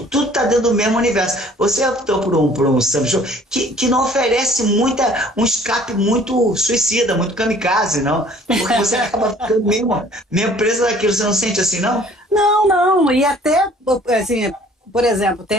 tá dentro do mesmo universo. Você optou por um samba show que não oferece um escape muito suicida, muito kamikaze, não? Porque você acaba ficando mesmo preso daquilo, você não sente assim, não? Não, e até, assim, por exemplo,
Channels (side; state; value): both; normal; correlation 0.54